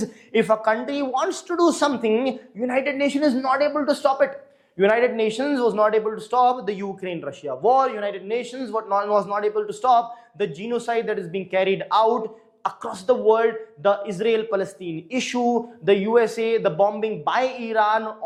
if a country wants to do something, United Nations is not able to stop it. United Nations was not able to stop the Ukraine-Russia war. United Nations was not able to stop the genocide that is being carried out across the world, the Israel-Palestine issue, the USA, the bombing by Iran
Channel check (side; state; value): both; identical; correlation 1.00